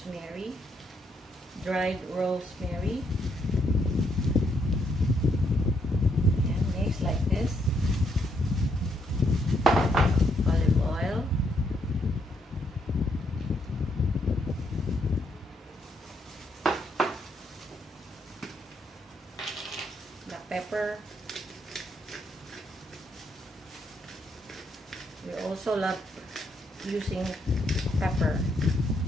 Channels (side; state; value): both; normal; correlation 0.75